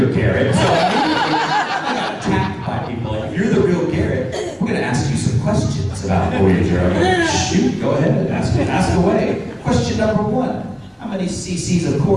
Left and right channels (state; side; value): identical; both; correlation 1.00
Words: Garrett. So I got attacked by people, like, if you're the real Garrett, we're gonna ask you some questions about Voyager. I'm like, shoot, go ahead, ask away. Question number 1, how many cc's of